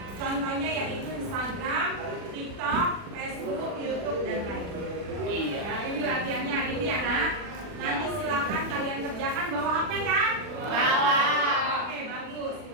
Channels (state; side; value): late; left; 40 ms